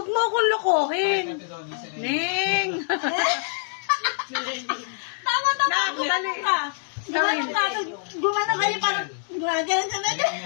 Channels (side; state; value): right; silent; digital silence